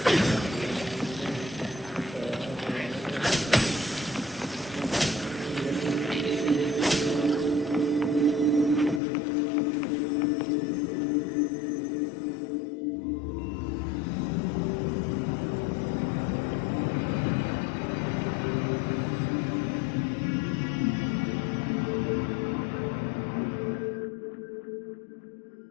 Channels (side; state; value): right; drops out; at 9.0 s